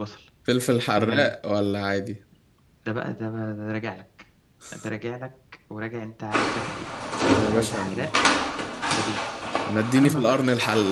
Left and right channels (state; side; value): identical; both; correlation 1.00